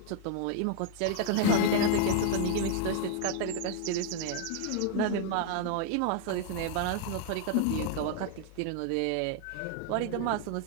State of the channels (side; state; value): both; different; correlation 0.00